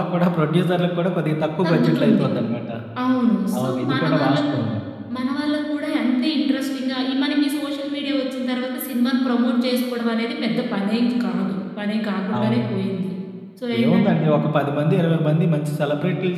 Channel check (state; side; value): identical; both; correlation 1.00